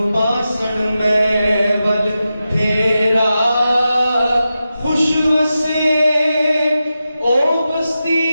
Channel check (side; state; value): both; inverted; correlation -0.91